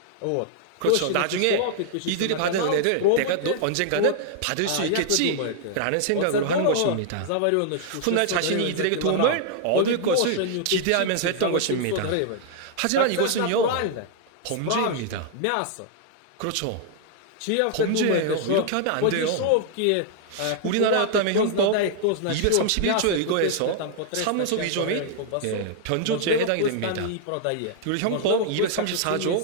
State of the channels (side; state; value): both; different; correlation 0.00